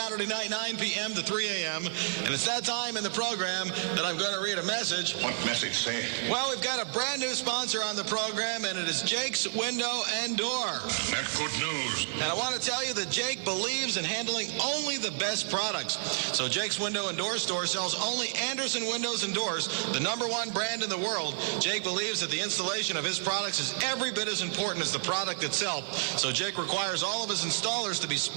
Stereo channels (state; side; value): silent; left; 55 dB below the other